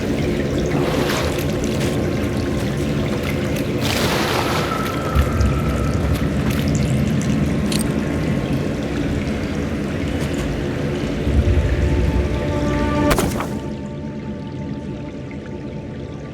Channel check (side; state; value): both; identical; correlation 1.00